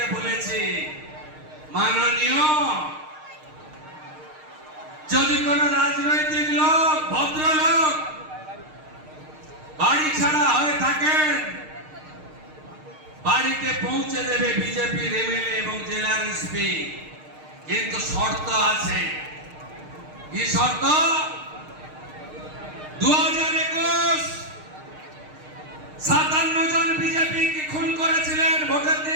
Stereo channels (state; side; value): late; left; 6.5 ms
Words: বলেছি, মাননীয়, যদি কোন রাজনৈতিক লোক, ভদ্রলোক বাড়ি ছাড়া হয়ে থাকেন, বাড়িতে পৌঁছে দেবে বিজেপির এমএলএ এবং জেলার এসপি। কিন্তু শর্ত আছে। কি শর্ত? 2021 57 জন বিজেপি কি খুন করেছিলেন ভোটের